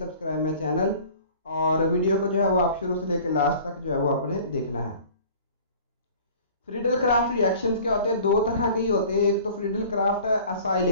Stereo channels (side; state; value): both; inverted; correlation -0.47